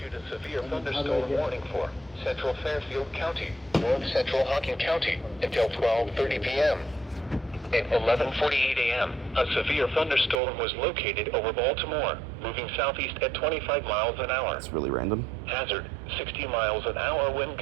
a severe thunderstorm warning for Central Fairfield County, North Central Hocking County until 12:30 p.m. At 11:48 a.m., a severe thunderstorm was located over Baltimore, moving southeast at 25 miles an hour. That's really random. Hazard, 60 miles an hour wind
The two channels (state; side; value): drops out; left; at 10.4 s